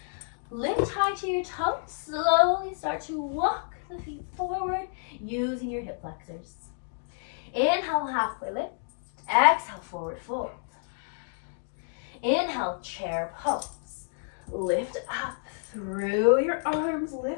Lift high to your toes. Slowly start to walk the feet forward using your hip flexors. Inhale, halfway lift. Exhale, forward fold. Inhale, chair pose. Lift up through your arms,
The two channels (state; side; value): silent; right; digital silence